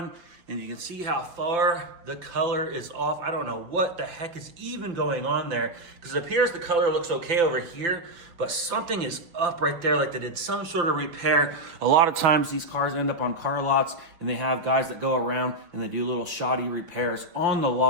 And you can see how far the color is off. I don't know what the heck is even going on there, because it appears the color looks okay over here, but something is up right there, like they did some sort of repair. A lot of times these cars end up on car lots and they have guys that go around and they do little shoddy repairs on the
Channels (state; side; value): late; left; 5.9 ms